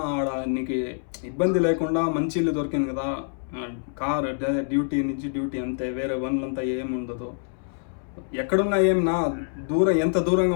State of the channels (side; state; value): right; silent; 61 dB below the other